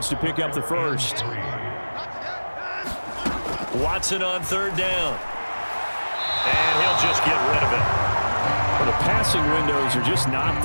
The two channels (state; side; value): inverted; both; correlation -1.00